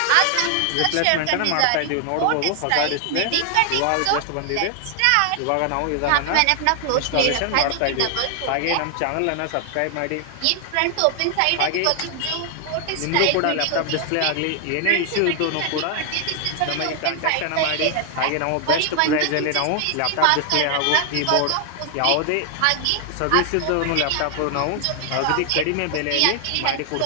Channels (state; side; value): different; both; correlation 0.00